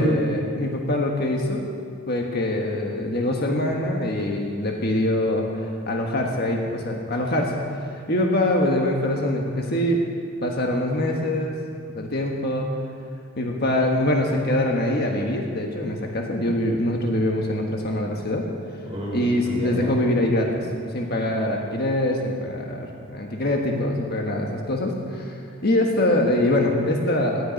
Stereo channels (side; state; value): both; normal; correlation 0.36